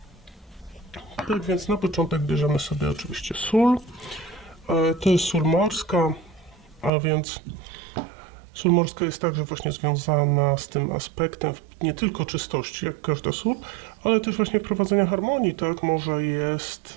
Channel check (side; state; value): left; drops out; at 6.9 s